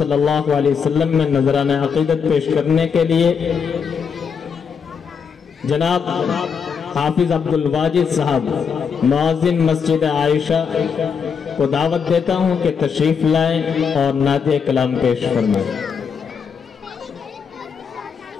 اللہ علیہ وسلم میں نذرانہ عقیدت پیش کرنے کے لیے جناب حافظ عبدالواجد صاحب معاذن مسجد عائشہ کو دعوت دیتا ہوں کہ تشریف لائیں اور نعت کلام پیش فرمائیں۔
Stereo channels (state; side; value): quieter; right; 6.4 dB